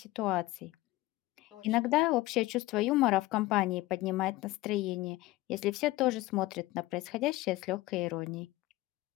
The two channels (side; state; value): right; quieter; 18.4 dB